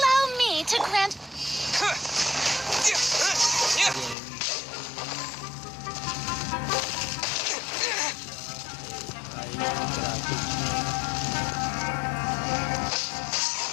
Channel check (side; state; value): right; drops out; at 4.2 s